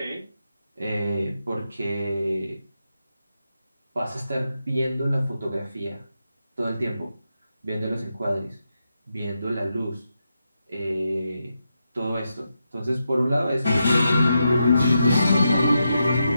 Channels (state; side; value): inverted; both; correlation -0.86